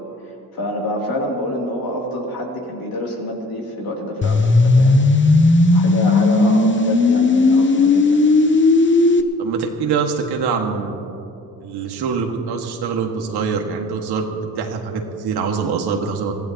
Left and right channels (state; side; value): normal; both; correlation 0.53